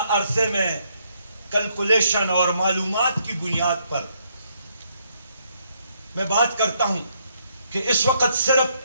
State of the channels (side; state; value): both; inverted; correlation -0.73